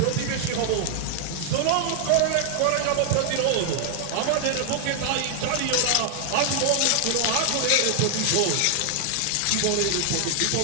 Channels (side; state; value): both; different; correlation 0.00